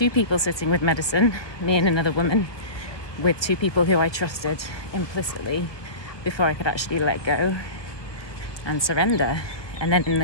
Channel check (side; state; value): right; late; 1.2 ms